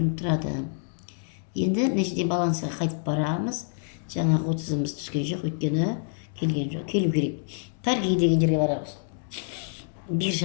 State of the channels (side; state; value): right; silent; 60 dB below the other